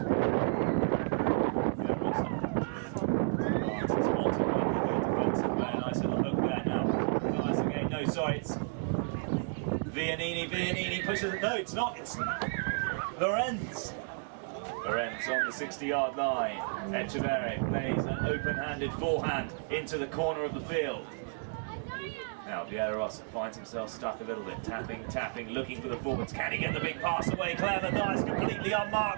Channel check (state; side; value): silent; left; 56 dB below the other